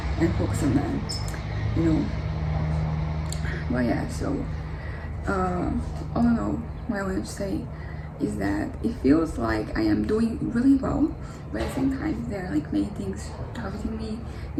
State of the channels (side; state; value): both; identical; correlation 1.00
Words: and focus on them, you know. Well, yeah, so all in all, what I want to say is that it feels like I am doing really well, but at the same time there are like many things targeting me,